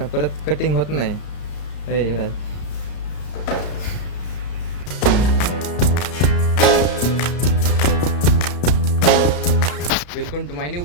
परत कटिंग होत नाही. Raj welcome to my new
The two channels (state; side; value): late; right; 34 ms